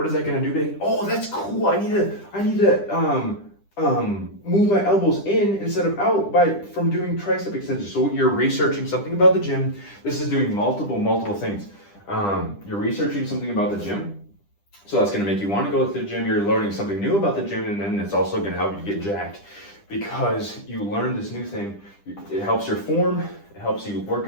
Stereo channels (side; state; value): right; late; 10 ms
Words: is that gonna do today? Oh, that's cool. I need to move my elbows in instead of out from doing tricep extensions. So you're researching something about the gym. This is doing multiple things. You're researching something about the gym. So that's gonna make you want to go to the gym. You're learning something new about the gym, and then it's also gonna help you get jacked because you learned this new thing. It helps your form. It helps you work